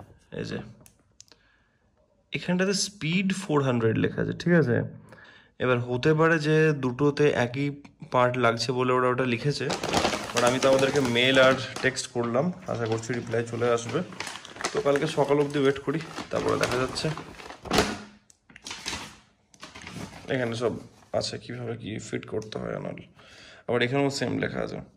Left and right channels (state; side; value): identical; both; correlation 1.00